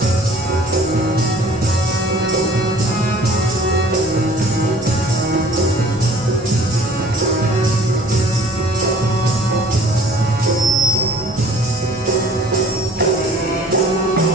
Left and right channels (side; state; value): both; normal; correlation 0.51